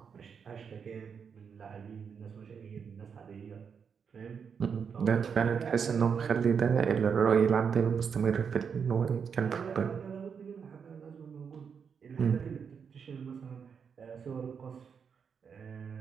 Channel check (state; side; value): quieter; left; 6.6 dB